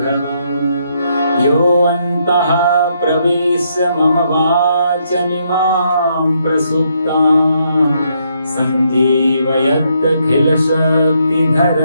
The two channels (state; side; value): inverted; both; correlation -0.75